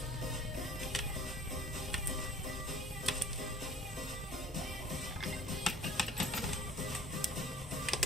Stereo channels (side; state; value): both; normal; correlation 0.48